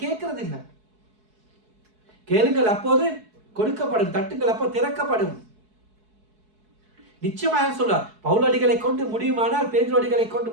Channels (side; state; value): left; late; 4.7 ms